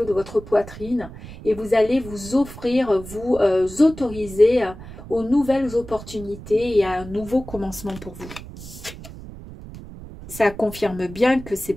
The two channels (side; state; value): right; noise; rumble, 14 dB below the sound